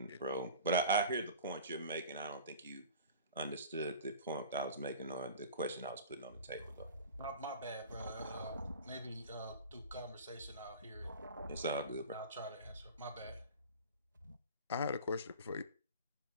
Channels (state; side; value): inverted; both; correlation -0.38